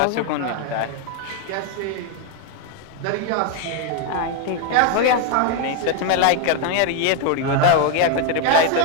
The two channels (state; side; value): different; both; correlation 0.01